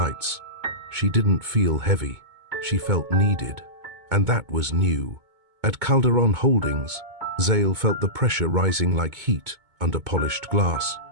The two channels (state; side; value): late; left; 2.2 ms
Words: She didn't feel heavy, she felt needed, and that was new. At Calderon Holdings, Zale felt the pressure rising like heat under polished glass.